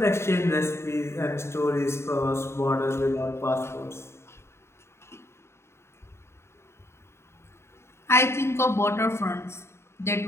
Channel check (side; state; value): right; late; 0.13 ms